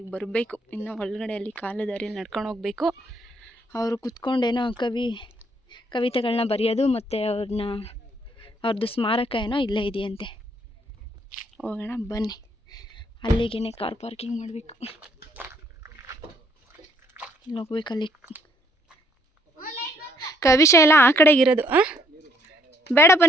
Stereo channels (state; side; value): normal; both; correlation 0.68